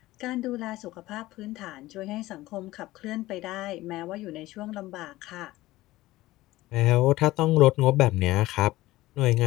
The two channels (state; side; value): quieter; right; 17.6 dB